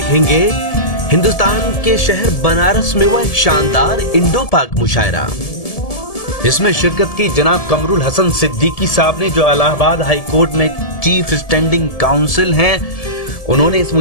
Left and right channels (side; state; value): right; late; 1.7 ms